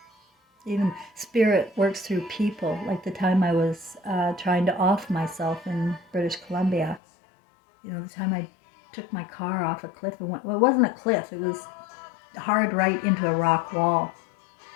Even spirit works through people. Like the time I was trying to off myself in British Columbia. You know, the time I took my car off a cliff and went, well, it wasn't a cliff. It was hard right into a rock wall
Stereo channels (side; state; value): right; drops out; at 7.0 s